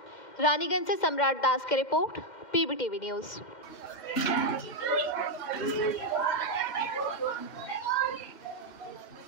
रानीगंज से सम्राट दास की रिपोर्ट, पीबीटीवी न्यूज। पीछे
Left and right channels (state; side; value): late; right; 2.1 ms